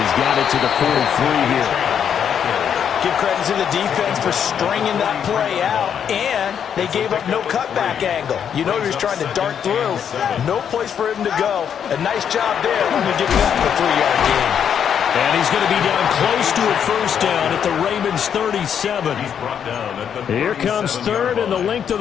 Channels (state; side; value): quieter; right; 8.3 dB